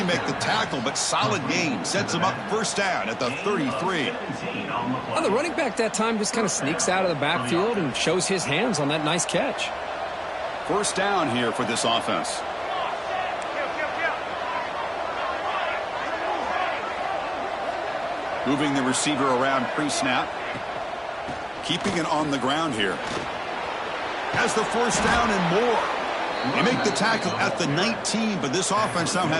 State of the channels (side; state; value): both; identical; correlation 1.00